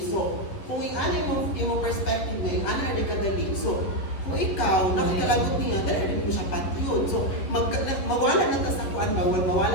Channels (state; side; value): late; right; 10 ms